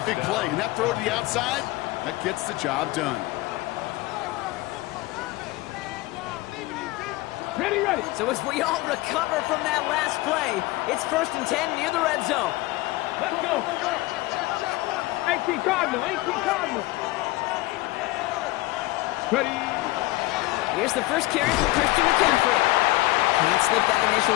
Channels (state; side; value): quieter; right; 19.4 dB